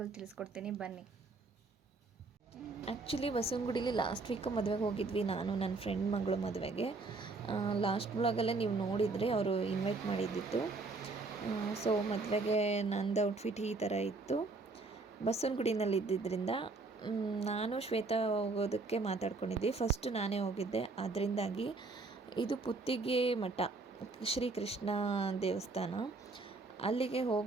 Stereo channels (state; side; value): quieter; left; 3.7 dB